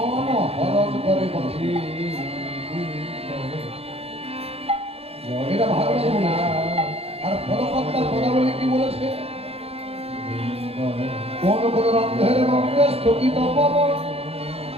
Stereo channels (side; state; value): left; late; 0.29 ms